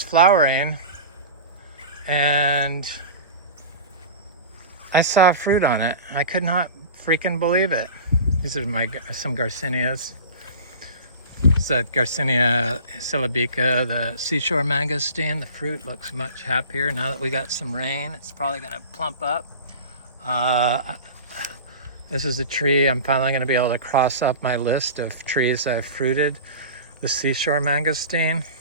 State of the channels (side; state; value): both; inverted; correlation -0.35